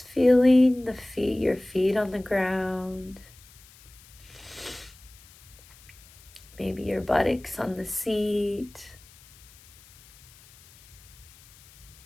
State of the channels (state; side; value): noise; left; hiss, 24 dB below the sound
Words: feeling your feet on the ground, maybe your buttocks on the seat,